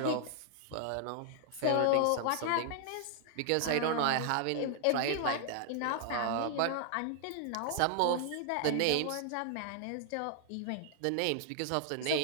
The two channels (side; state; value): both; different; correlation 0.00